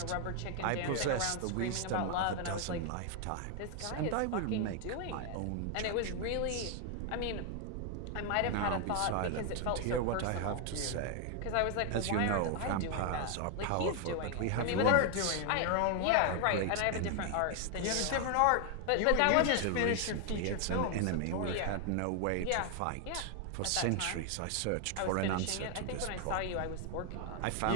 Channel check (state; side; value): different; both; correlation 0.00